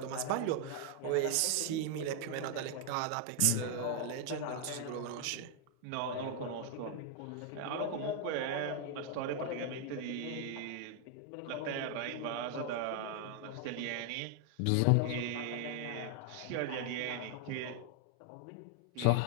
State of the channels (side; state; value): both; different; correlation 0.00